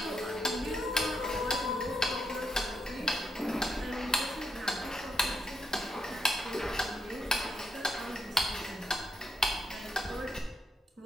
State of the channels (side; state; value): both; normal; correlation 0.80